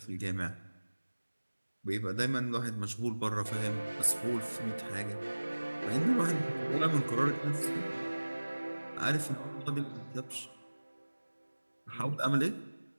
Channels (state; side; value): inverted; both; correlation -1.00